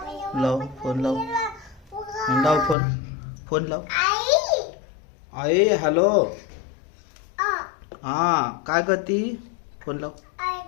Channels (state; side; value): drops out; right; at 2.8 s